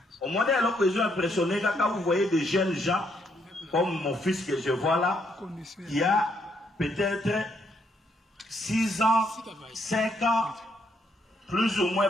Au moins, alors que je suis impressionné, quand vous voyez des jeunes gens, comme mon fils que je vois là, qui a peut-être 6 ans, 5 ans, plus ou moins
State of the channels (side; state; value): both; normal; correlation 0.73